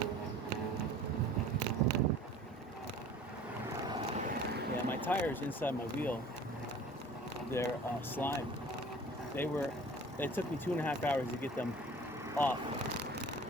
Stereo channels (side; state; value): both; normal; correlation 0.46